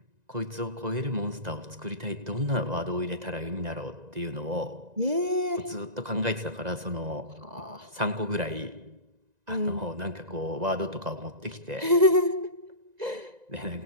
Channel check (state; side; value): late; left; 1.9 ms